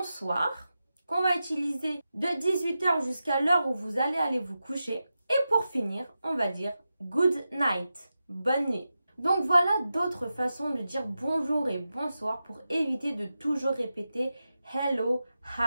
qu'on va utiliser de 18 h jusqu'à l'heure où vous allez aller vous coucher. Et pour finir, on va dire good night, bonne nuit. Donc voilà d'autres façons de dire bonjour et bonsoir pour éviter de toujours répéter hello,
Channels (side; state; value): both; inverted; correlation -0.91